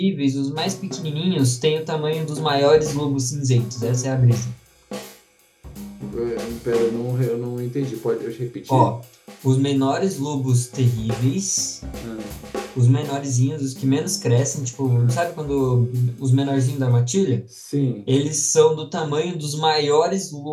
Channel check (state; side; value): identical; both; correlation 1.00